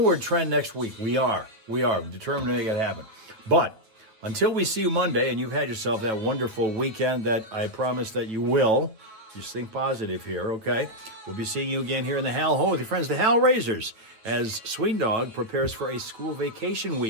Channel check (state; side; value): late; left; 8.8 ms